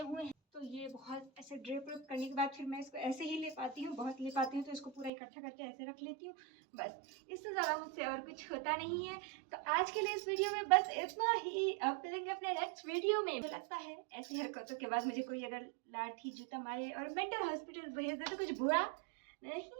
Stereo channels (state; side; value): drops out; left; at 5.1 s